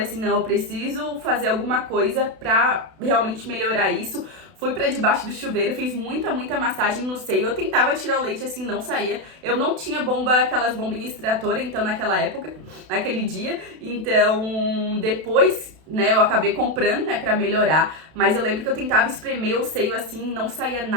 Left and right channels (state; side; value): late; left; 32 ms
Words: assim, não, eu preciso fazer alguma coisa pra realmente melhorar isso. Fui pra debaixo do chuveiro, fiz muita, muita massagem no seio. Eu tentava tirar o leite, assim, não saía. Eu não tinha aquelas bombinhas extratoras, então, naquela época, naquele dia. Então, depois, né, eu acabei comprando, né, pra melhorar. Mas eu lembro que eu tentava espremer o seio, assim, não saía